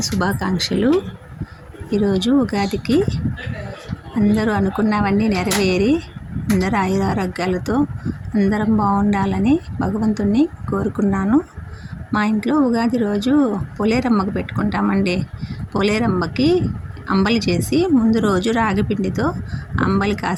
శుభాకాంక్షలు. ఈరోజు ఉగాదికి అందరూ అనుకున్నవన్నీ నెరవేరి అందరూ ఆయురారోగ్యాలతో అందరం బాగుండాలని భగవంతుణ్ణి కోరుకున్నాను. మా ఇంట్లో ఉగాది రోజు పోలేరమ్మకు పెట్టుకుంటామండి. పోలేరమ్మకి అంబలి చేసి ముందు రోజు రాగి పిండితో అంబలి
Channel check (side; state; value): both; identical; correlation 1.00